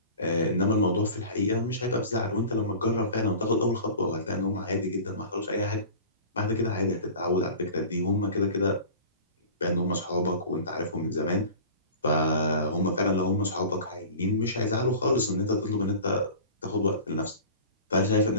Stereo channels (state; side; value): inverted; both; correlation -0.38